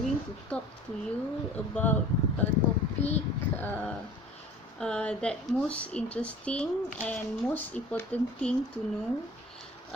to talk to you about a topic that most interesting and most important thing to know.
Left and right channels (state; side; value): normal; both; correlation 0.46